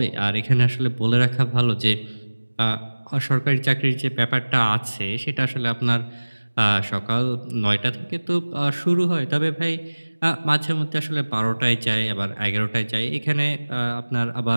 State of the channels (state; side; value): inverted; both; correlation -1.00